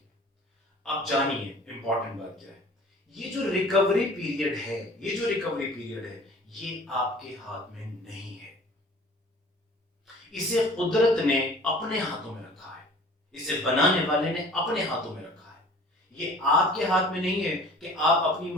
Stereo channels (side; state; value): both; normal; correlation 0.47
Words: अब जानिए इंपॉर्टेंट बात क्या है। ये जो रिकवरी पीरियड है, ये जो रिकवरी पीरियड है, ये आपके हाथ में नहीं है। इसे कुदरत ने अपने हाथों में रखा है, इसे बनाने वाले ने अपने हाथों में रखा है। ये आपके हाथ में नहीं है कि आप अपनी